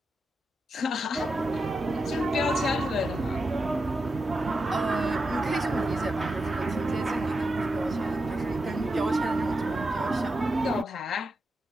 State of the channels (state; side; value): normal; both; correlation 0.87